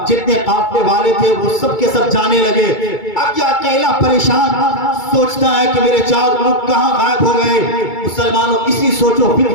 جتنے قافلے والے تھے وہ سب کے سب جانے لگے۔ اب یہ اکیلا پریشان سوچتا ہے کہ میرے 4 اونٹ کہاں غائب ہو گئے۔ مسلمانوں اسی سوچ و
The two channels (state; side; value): late; right; 2.2 ms